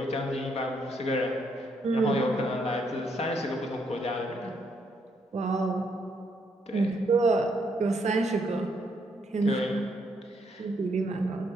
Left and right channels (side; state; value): both; normal; correlation 0.74